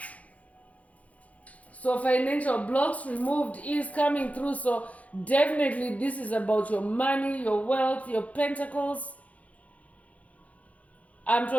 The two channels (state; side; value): late; right; 0.068 ms